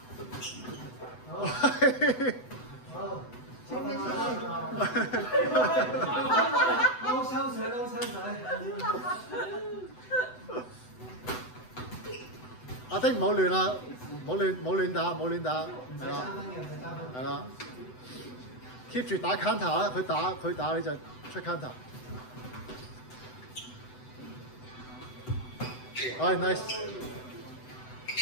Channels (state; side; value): late; right; 7.9 ms